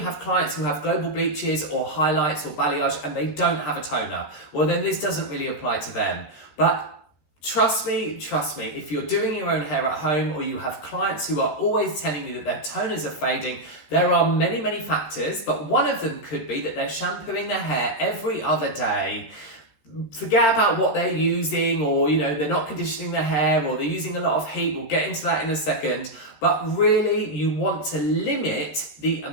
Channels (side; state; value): right; late; 13 ms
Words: clients who have global bleaches or highlights or balayage and they don't have a toner. Well, then this doesn't really apply to them. But trust me, if you're doing your own hair at home or you have clients who are always telling you that their toners are fading, there are many, many factors, but one of them could be that they're shampooing their hair every other day. Forget about what they're using, or they're not conditioning their hair, or they're using a lot of heat. We'll get into that in a second. But really, you want to limit the